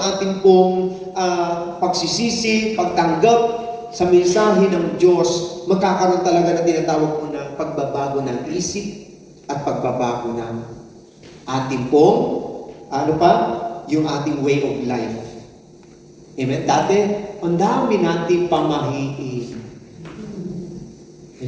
ating pong pagsisisi, pagtanggap sa mensahe ng Diyos, magkakaroon talaga na tinatawag po na pagbabago ng isip at pagbabago ng ating pong, yung ating way of life. Amen? Dati, ang dami nating pamahiin.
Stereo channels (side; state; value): both; identical; correlation 1.00